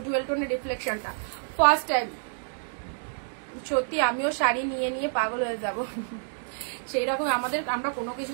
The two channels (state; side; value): silent; left; digital silence